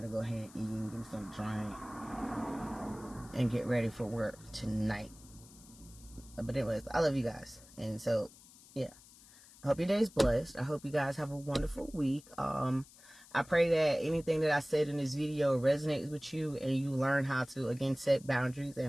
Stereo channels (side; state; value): left; noise; hiss, 22 dB below the sound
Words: go ahead and eat and get me some drink and get ready for work tonight. But anyways, I love you guys. And so, yeah. I hope your day is blessed. I hope you guys have a wonderful week. I pray that anything that I said in this video resonates with you and you learn how to, again, set boundaries